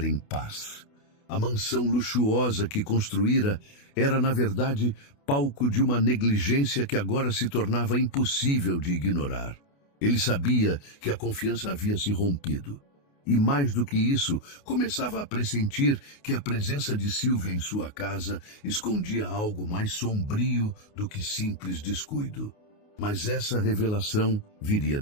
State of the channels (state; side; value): late; right; 28 ms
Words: em paz. A mansão luxuosa que construíra era, na verdade, palco de uma negligência que agora se tornava impossível de ignorar. Ele sabia que a confiança havia se rompido. E mais do que isso, começava a pressentir que a presença de Sílvia em sua casa escondia algo mais sombrio do que simples descuido. Mas essa revelação viria